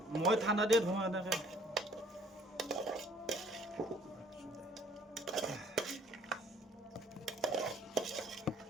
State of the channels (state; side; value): normal; both; correlation 0.57